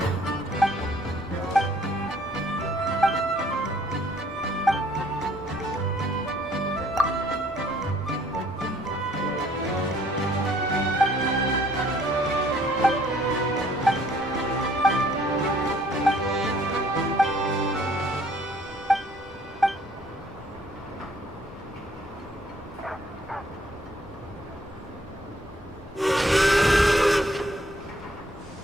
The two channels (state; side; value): normal; both; correlation 0.63